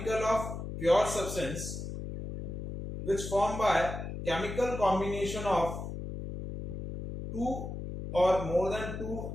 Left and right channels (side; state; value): left; noise; hum, 7 dB below the sound